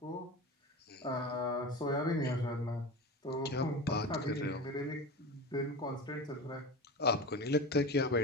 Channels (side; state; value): both; normal; correlation 0.28